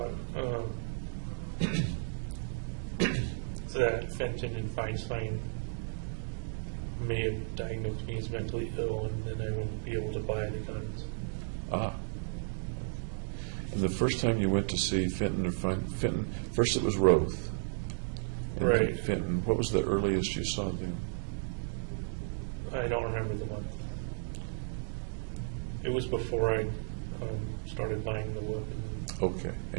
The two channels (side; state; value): left; silent; digital silence